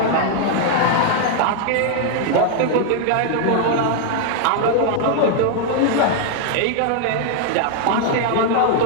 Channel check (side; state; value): both; different; correlation 0.00